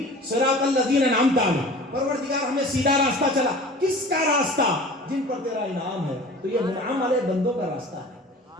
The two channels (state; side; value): normal; both; correlation 0.41